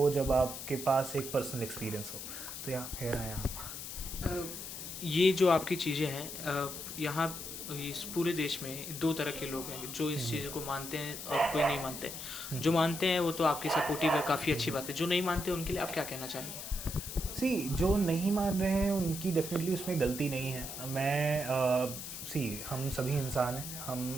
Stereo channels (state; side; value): noise; left; hiss, 8 dB below the sound